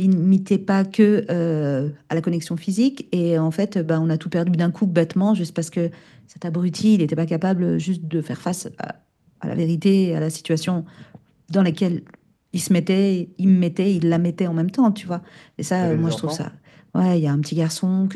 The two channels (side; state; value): both; identical; correlation 1.00